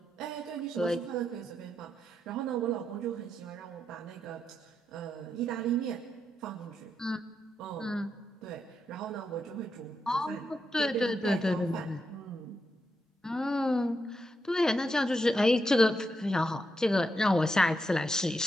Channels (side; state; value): both; normal; correlation 0.83